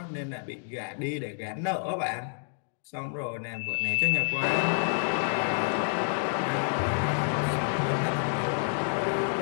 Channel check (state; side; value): silent; right; digital silence